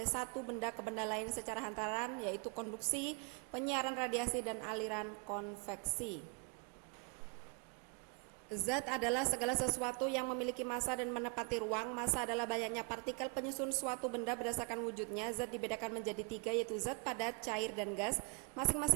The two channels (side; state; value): left; quieter; 33.6 dB